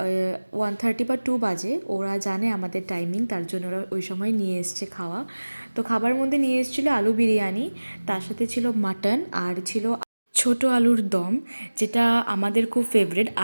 1:30 বা 2 বাজে, ওরা জানে আমাদের টাইমিং, তার জন্য ওরা ওই সময় নিয়ে এসছে খাওয়া। তো খাবার মধ্যে নিয়ে এসেছিলো আলু বিরিয়ানি, তার সাথে ছিল মাটন আর ছিল ছোট আলুর দম, যেটা আমাদের খুব ফেভারিট।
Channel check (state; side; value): inverted; both; correlation -1.00